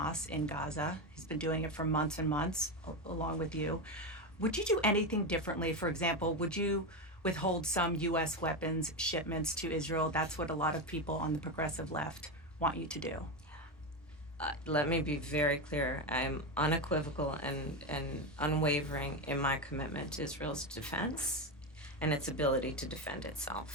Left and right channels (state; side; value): normal; both; correlation 0.14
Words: in Gaza. He's been doing it for months and months, along with you. Would you do anything differently? For example, would you withhold some U.S. weapons shipments to Israel? That's what a lot of people on the progressive left want you to do. Let me be very clear. I'm unequivocal and unwavering in my commitment to Israel's defense and its ability to defend